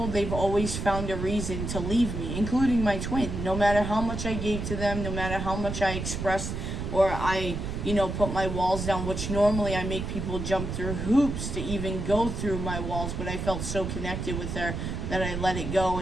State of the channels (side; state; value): right; noise; rumble, 4 dB below the sound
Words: they've always found a reason to leave me, including my twin. No matter how much I gave to them, no matter how much I expressed or I, put my walls down, which normally I make people jump through hoops to even go through my walls, but I felt so connected with her that I let it go